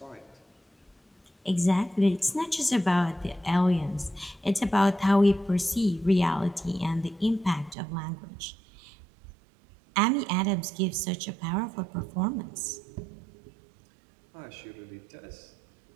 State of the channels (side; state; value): left; drops out; at 7.8 s